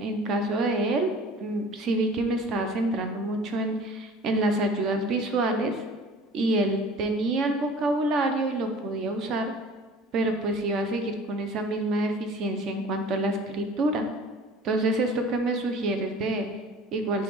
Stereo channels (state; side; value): normal; both; correlation 0.45